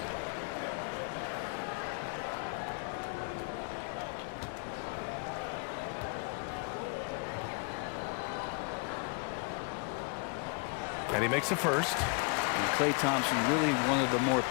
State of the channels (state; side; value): quieter; right; 34.4 dB